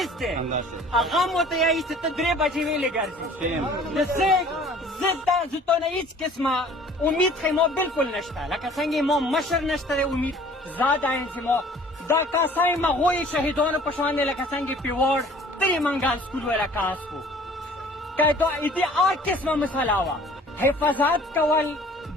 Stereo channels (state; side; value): normal; both; correlation 0.51